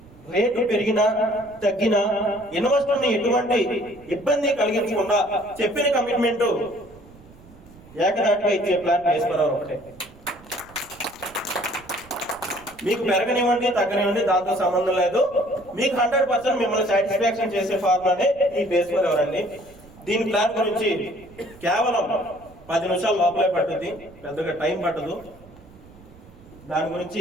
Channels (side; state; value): right; noise; rumble, 23 dB below the sound